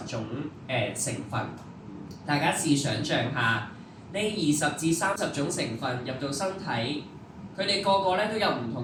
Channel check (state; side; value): identical; both; correlation 1.00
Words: 種成分。大家試想像下，呢20至30種成分入到身體，佢哋個個咧都有唔